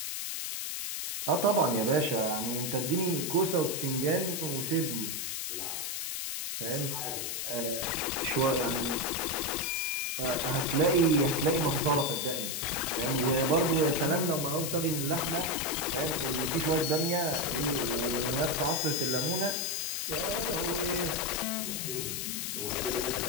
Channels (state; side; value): noise; left; hiss, 3 dB below the sound